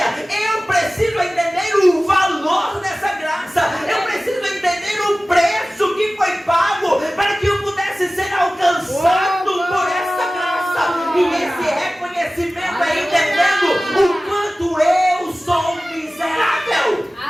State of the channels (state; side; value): normal; both; correlation 0.97